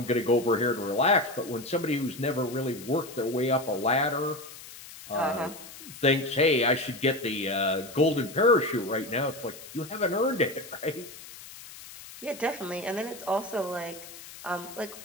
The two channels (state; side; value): noise; left; hiss, 16 dB below the sound